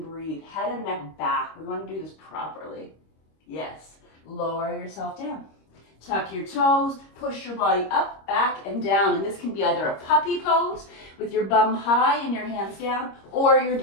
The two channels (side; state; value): right; late; 26 ms